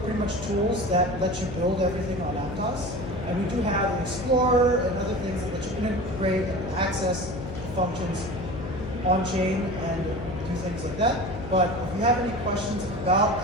pretty much tools that let you build everything on Aptos, and we do have an Explorer and other things that let you integrate and access the functions on-chain and do things like that. But if you have any questions about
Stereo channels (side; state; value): left; noise; hum, 9 dB below the sound